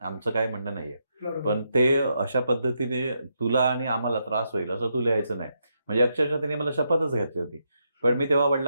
काय म्हणणं नाहीये, पण ते अशा पद्धतीने तुला आणि आम्हाला त्रास होईल असं तू लिहायचं नाही. म्हणजे अक्षरशः तिने मला शपथच घातली होती. पण मी तेव्हा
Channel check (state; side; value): inverted; both; correlation -0.81